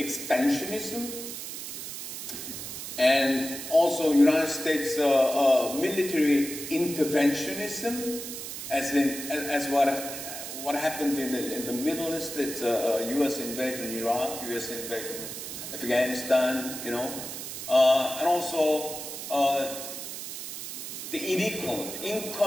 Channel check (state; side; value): noise; right; hiss, 8 dB below the sound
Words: and also United States military interventionism, as what happened in the Middle East. It's U.S. invasion in Iraq, U.S. invasion in Afghanistan, and also the